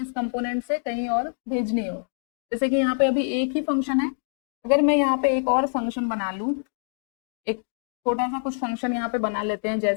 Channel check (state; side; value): silent; right; digital silence